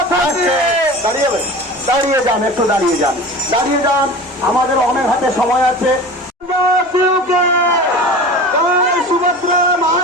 দাঁড়িয়ে যান, একটু দাঁড়িয়ে যান, দাঁড়িয়ে যান, আমাদের অনেক হাতে সময় আছে। সুভদ্রা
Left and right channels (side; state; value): both; normal; correlation 0.35